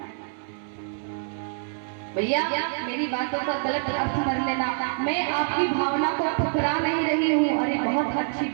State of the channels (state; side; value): silent; left; 61 dB below the other